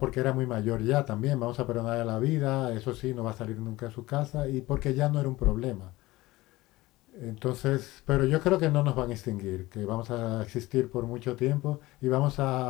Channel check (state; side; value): quieter; right; 19.0 dB